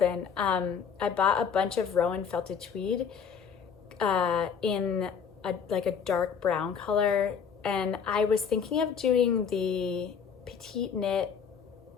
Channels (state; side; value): quieter; right; 6.9 dB